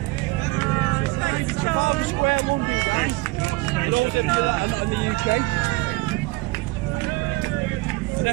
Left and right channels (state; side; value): quieter; left; 23.0 dB